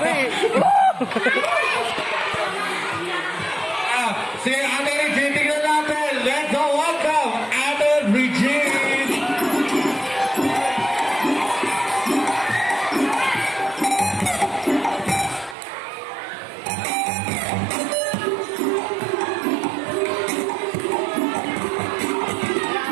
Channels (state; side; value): drops out; left; at 15.6 s